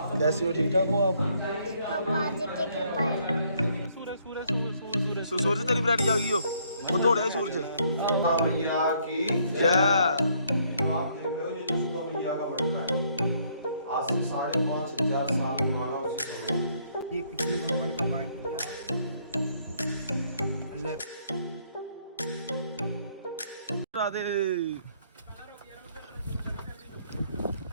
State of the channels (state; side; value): inverted; both; correlation -0.68